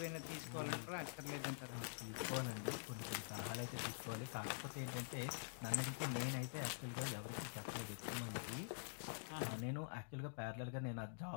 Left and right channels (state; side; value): silent; right; digital silence